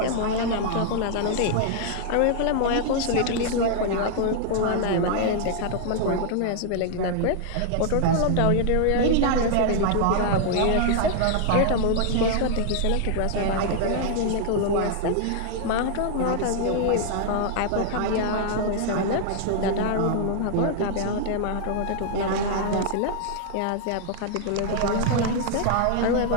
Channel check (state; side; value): different; both; correlation 0.00